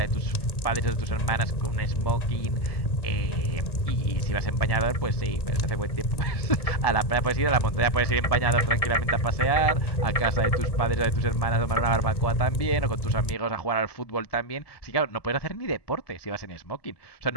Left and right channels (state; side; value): late; right; 1.7 ms